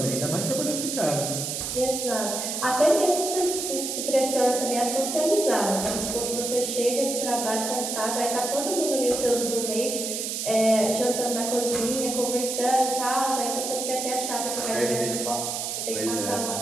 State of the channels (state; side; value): noise; right; hiss, 3 dB below the sound